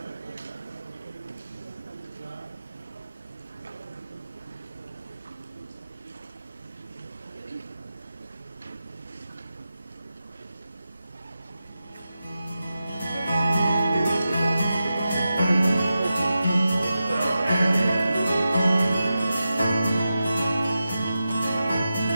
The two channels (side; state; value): both; inverted; correlation -0.91